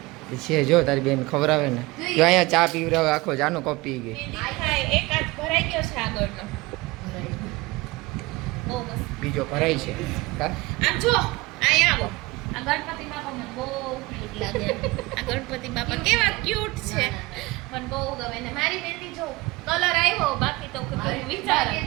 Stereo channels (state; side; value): quieter; left; 21.9 dB